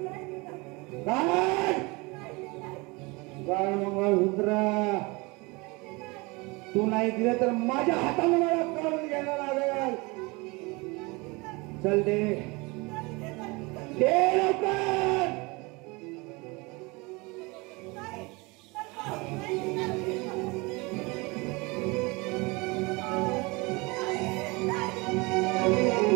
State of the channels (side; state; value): left; quieter; 25.9 dB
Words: नाही देणार. काढ. नाही देणार. काढ मंगळसूत्र. तू नाही दिलं तर माझ्या हाताने मला काढून घ्यायला लागेल. चल दे. दे लवकर.